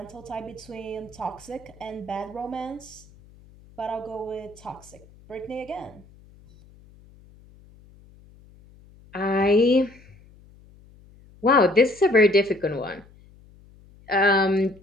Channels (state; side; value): noise; left; hum, 25 dB below the sound